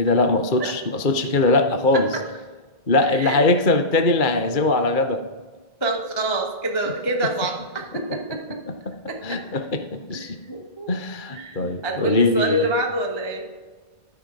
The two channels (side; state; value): right; late; 2.3 ms